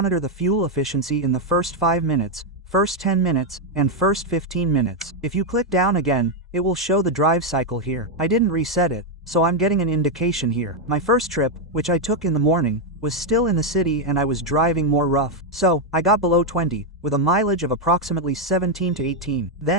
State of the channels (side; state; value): both; normal; correlation 0.02